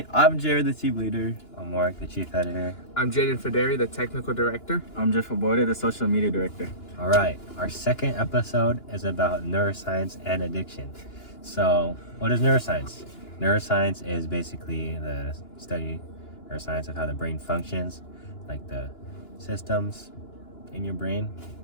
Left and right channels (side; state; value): right; late; 2.9 ms